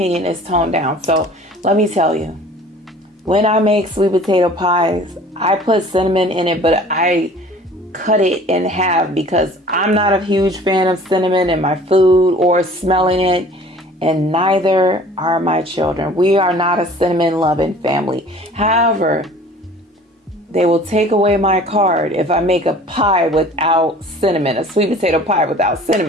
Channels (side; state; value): both; normal; correlation 0.48